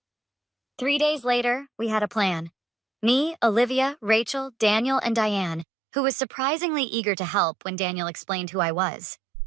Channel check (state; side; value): drops out; left; at 5.7 s